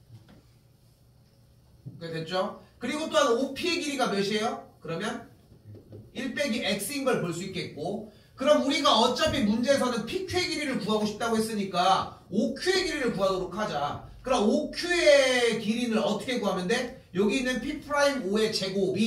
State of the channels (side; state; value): both; identical; correlation 1.00